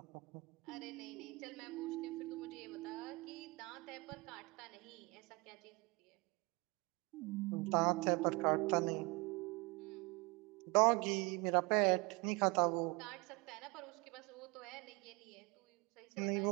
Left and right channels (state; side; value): quieter; left; 26.3 dB